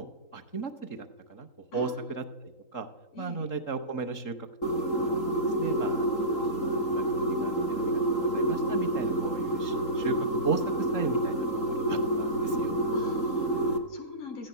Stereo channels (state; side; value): late; right; 3.8 ms